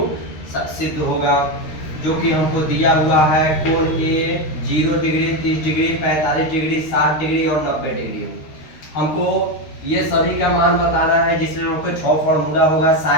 सिद्ध होगा, जो कि हमको दिया हुआ है कोण ए 0 डिग्री, 30 डिग्री, 45 डिग्री, 60 डिग्री और 90 डिग्री। हमको ये सभी का मान बताना है, जिसमें हमको 6 फार्मूला होगा,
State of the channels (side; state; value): right; late; 13 ms